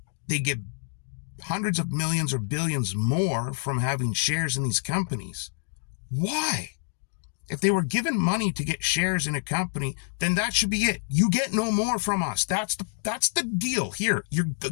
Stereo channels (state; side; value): silent; right; digital silence